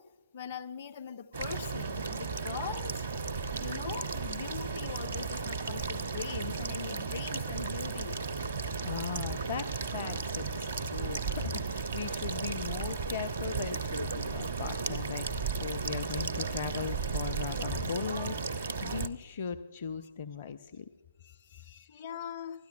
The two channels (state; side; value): inverted; both; correlation -0.52